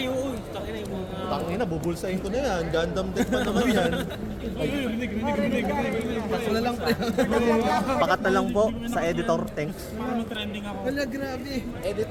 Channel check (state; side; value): identical; both; correlation 1.00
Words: oo. Takin na yung mga... Tangina, bubulsahin ko na yan. Gundam deck pa naman yan. Rinig. Paso na lang. Pakat na lang po sa editor. Thanks. Parang trending ako. Wala, grabe.